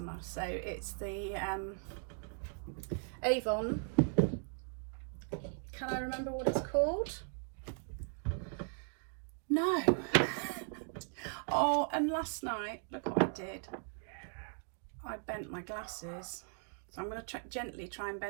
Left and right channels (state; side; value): silent; left; 53 dB below the other